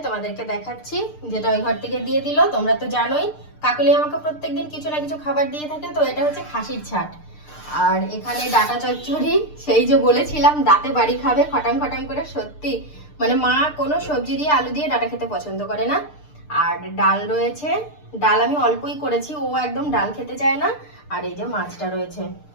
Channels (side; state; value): right; late; 6.7 ms